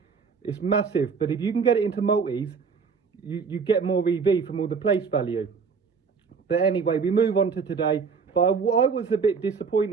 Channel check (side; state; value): left; quieter; 5.5 dB